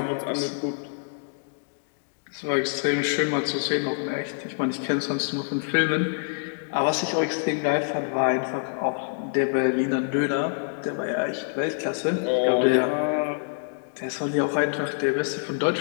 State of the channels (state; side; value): silent; right; digital silence